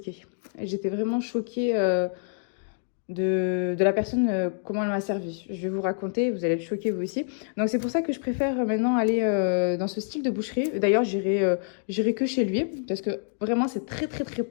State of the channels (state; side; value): silent; right; digital silence